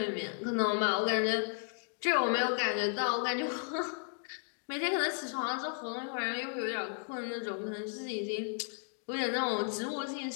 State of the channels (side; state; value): right; silent; 55 dB below the other